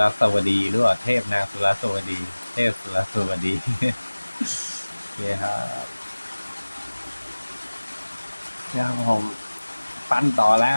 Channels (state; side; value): inverted; both; correlation -1.00